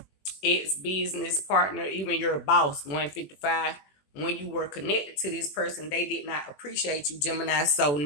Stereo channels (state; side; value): late; right; 21 ms